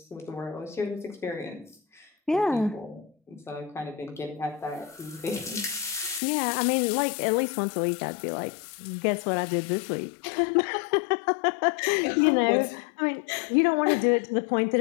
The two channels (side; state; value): right; drops out; at 6.2 s